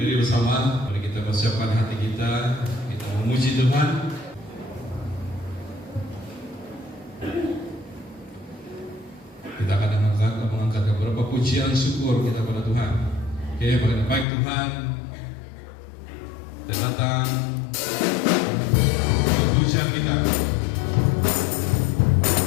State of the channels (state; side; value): drops out; right; at 14.2 s